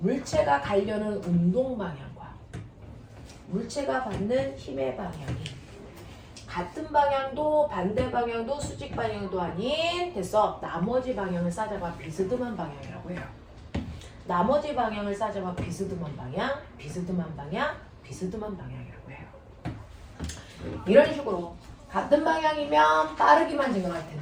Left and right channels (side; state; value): both; identical; correlation 1.00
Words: 가려는 운동 방향과 물체가 받는 힘의 방향이 같은 방향도 반대 방향도 수직 방향도 아닌 됐어. 나머지 방향을 싸잡아 비스듬한 방향이라고 해요. 나머지 방향을 싸잡아 비스듬한 방향, 비스듬한 방향, 비스듬한 방향이라고 해요. 이런 식으로 같은 방향이면 빠르기만 진행할